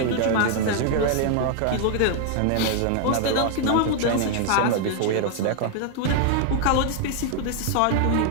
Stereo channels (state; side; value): different; both; correlation 0.00